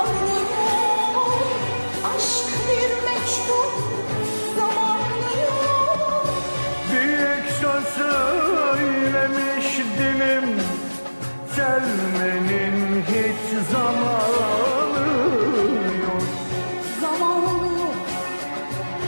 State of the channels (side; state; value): both; inverted; correlation -1.00